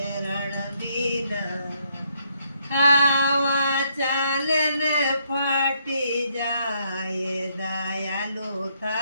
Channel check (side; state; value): both; inverted; correlation -0.72